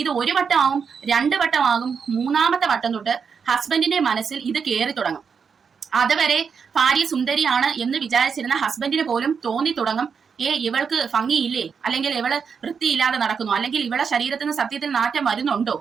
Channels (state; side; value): quieter; left; 6.2 dB